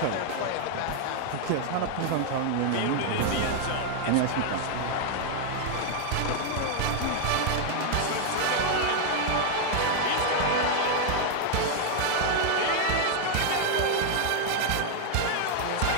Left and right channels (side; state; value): both; different; correlation 0.00